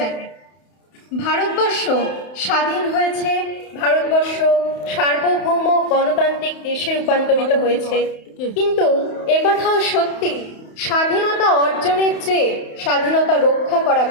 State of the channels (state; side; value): late; right; 31 ms